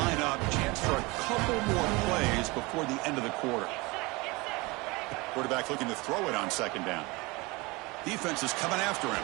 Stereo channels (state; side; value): quieter; left; 24.4 dB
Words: up, chance for a couple more plays before the end of the quarter. Quarterback looking to throw it on 2nd down. Defense is coming after him.